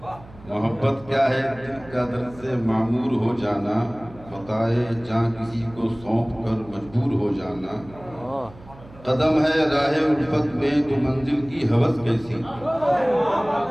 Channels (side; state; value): right; noise; hum, 21 dB below the sound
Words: محبت کیا ہے دل کا درد سے معمور ہو جانا، متاع جاں کسی کو سونپ کر مجبور ہو جانا، قدم ہے راہ الفت میں تو منزل کی ہوس کیسی،